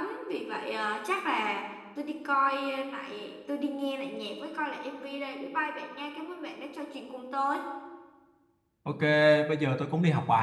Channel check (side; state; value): both; identical; correlation 1.00